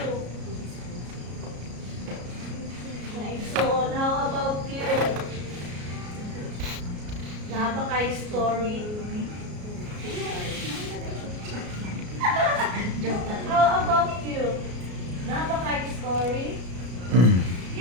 So, how about you? Naba kay story? How about you? Naba kay story?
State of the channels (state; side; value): late; left; 33 ms